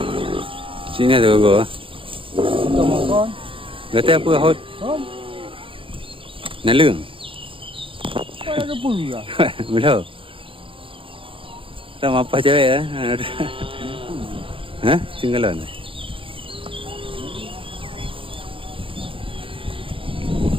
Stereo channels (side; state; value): left; late; 0.26 ms